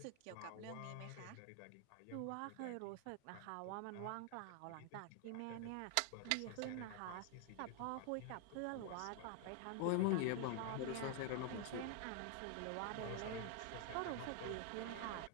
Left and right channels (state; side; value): different; both; correlation 0.00